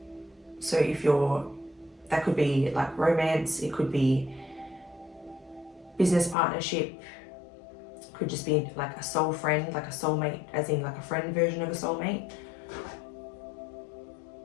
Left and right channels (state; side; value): drops out; right; at 6.4 s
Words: So if that could be like romance, it could be business partnership, could just be like a soul friend, like a soulmate, as in like a friend version of a soulmate.